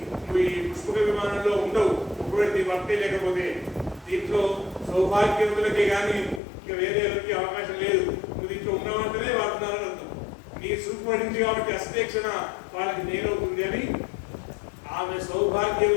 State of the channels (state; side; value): drops out; right; at 6.4 s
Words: నువ్వు ఈ పుష్పక విమానంలో ఉండవు, ఒకవేళ నీ భర్తే లేకపోతే. దీంట్లో సౌభాగ్యవంతులకే కానీ ఇక వేరే ఎవరికి అవకాశం లేదు. నువ్వు దీంట్లో ఉన్నవంటనే వాడుతున్నారని అర్థం. నీ చూపు పడింది కాబట్టి అస్తేక్షణ వాళ్ళకి నేలవుతుంది అని. ఆమె